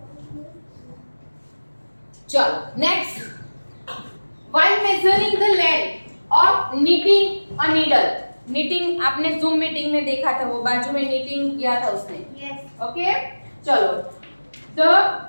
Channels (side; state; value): both; inverted; correlation -1.00